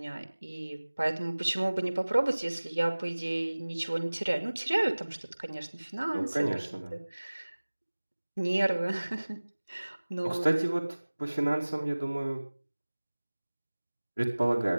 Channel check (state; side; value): inverted; both; correlation -1.00